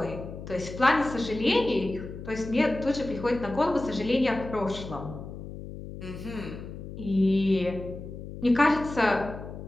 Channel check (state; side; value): noise; left; hum, 11 dB below the sound